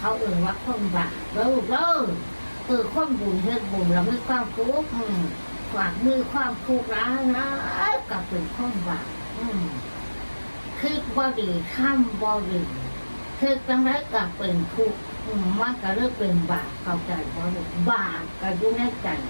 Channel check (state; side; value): inverted; both; correlation -1.00